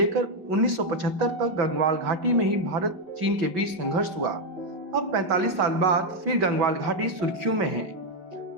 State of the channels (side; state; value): left; late; 5.3 ms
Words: 1975 तक गंगवाल घाटी में ही भारत चीन के बीच संघर्ष हुआ। अब 45 साल बाद फिर गंगवाल घाटी सुर्खियों में है।